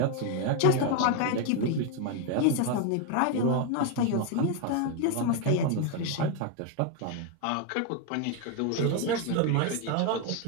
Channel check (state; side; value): different; both; correlation 0.01